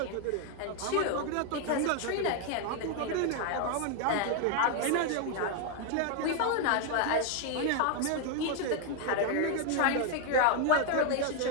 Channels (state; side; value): different; both; correlation 0.01